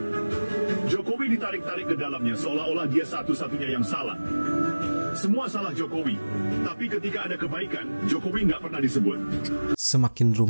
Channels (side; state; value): both; inverted; correlation -1.00